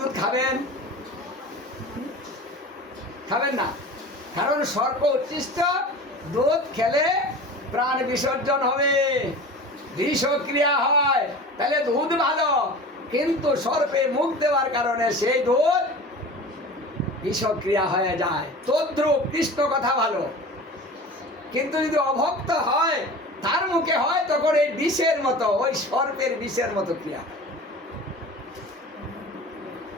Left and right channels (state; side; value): normal; both; correlation 0.37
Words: খাবেন? খাবেন না, কারণ সর্প উচ্ছিষ্ট দুধ খেলে প্রাণ বিসর্জন হবে, বিষক্রিয়া হয়। তাহলে দুধ ভালো, কিন্তু সর্পে মুখ দেওয়ার কারণে সেই দুধ বিষক্রিয়া হয়ে যায়। তদ্রূপ কৃষ্ণ কথা ভালো, কিন্তু যদি অভক্ত হয়, তার মুখে হয়, তখন এই বিষের মতো, ওই সর্পের বিষের মতো ক্রিয়া।